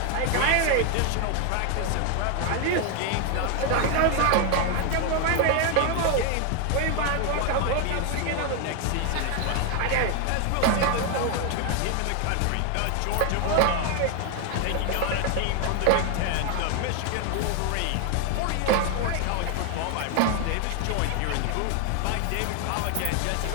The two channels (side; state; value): both; different; correlation 0.01